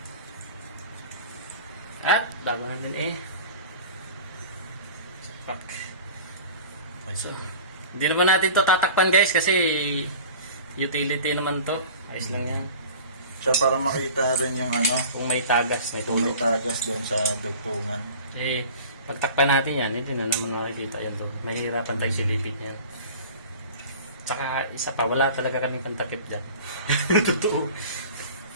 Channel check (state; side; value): inverted; both; correlation -0.40